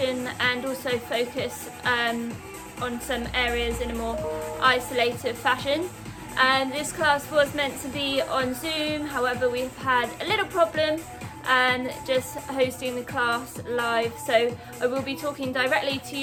and also focus on some areas in a more isolated fashion. This class was meant to be on Zoom, however we've had a little problem just hosting the class live, so I will be talking directly to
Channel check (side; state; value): both; identical; correlation 1.00